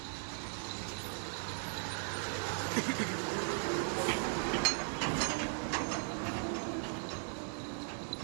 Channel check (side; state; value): left; silent; 52 dB below the other